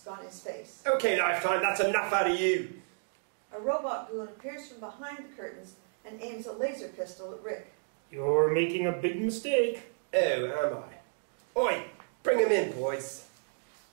on his face. Okay, Lifetime, that's enough out of you. A robot goon appears from behind the curtains and aims a laser pistol at Rick. You're making a big mistake. Oh, am I? Oi, bring him in, boys.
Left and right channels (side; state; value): left; silent; digital silence